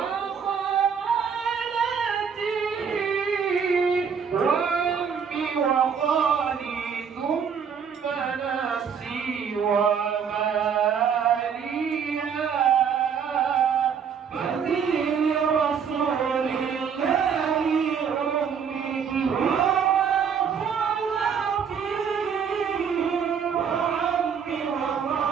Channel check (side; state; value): left; quieter; 7.0 dB